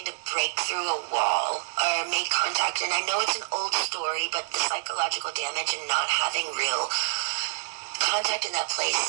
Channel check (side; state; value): left; silent; digital silence